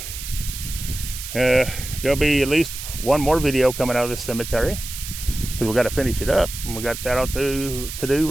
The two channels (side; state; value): right; noise; hiss, 9 dB below the sound